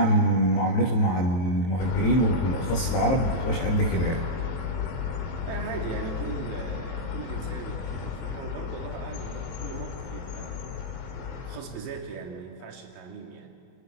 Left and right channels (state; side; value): late; right; 23 ms